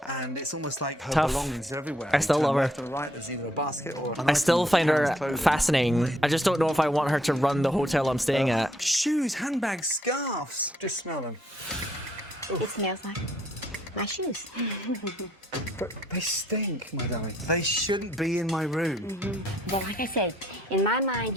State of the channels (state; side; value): normal; both; correlation 0.69